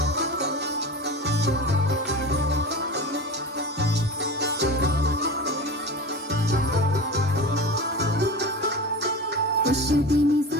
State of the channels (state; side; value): normal; both; correlation 0.30